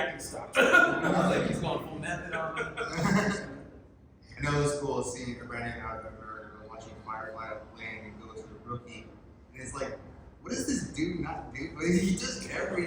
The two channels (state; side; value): identical; both; correlation 1.00